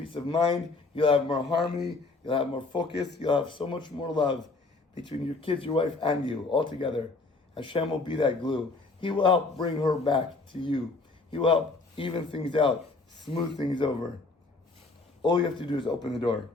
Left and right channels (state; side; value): quieter; right; 3.6 dB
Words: of mind, you'll have more harmony, you'll have more focus, you'll have so much more love between your kids, your wife, and you all together. Hashem will be that glue. He will help bring her back to you. He will help even things out, smooth things over. All you have to do is open the door.